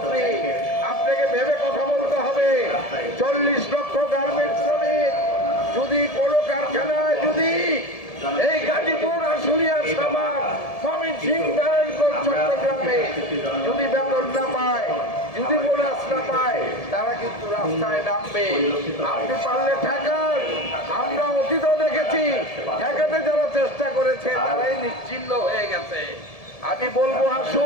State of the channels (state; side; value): late; right; 1.7 ms